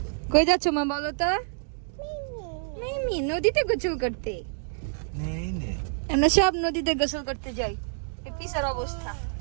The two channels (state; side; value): silent; left; digital silence